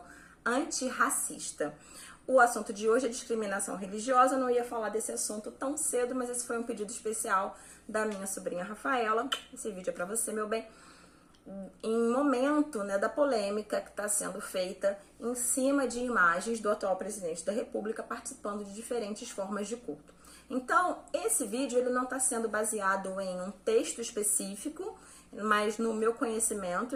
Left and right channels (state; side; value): identical; both; correlation 1.00